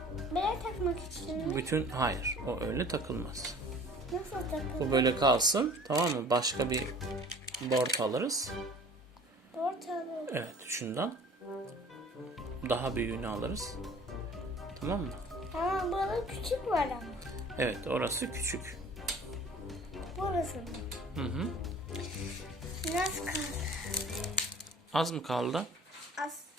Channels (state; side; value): normal; both; correlation 0.48